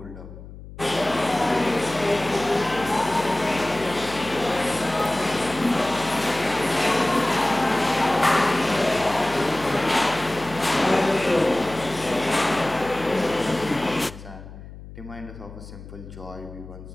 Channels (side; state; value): left; noise; hum, 15 dB below the sound